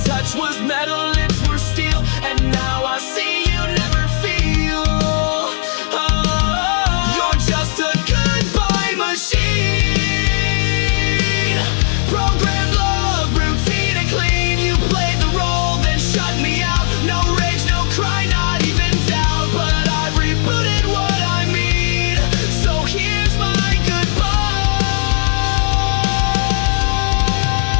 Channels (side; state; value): right; silent; 63 dB below the other